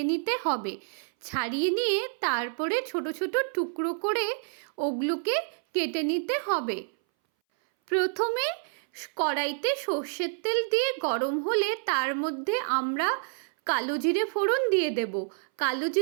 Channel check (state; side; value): silent; left; 59 dB below the other